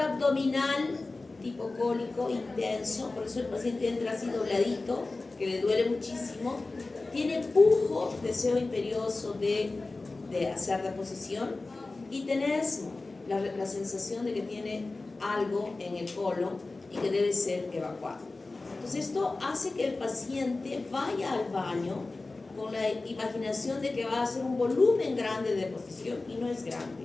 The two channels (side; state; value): right; quieter; 3.4 dB